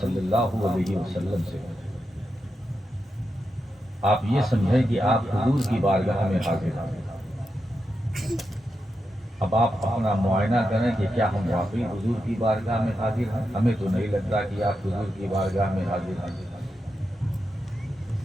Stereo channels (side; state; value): both; normal; correlation 0.87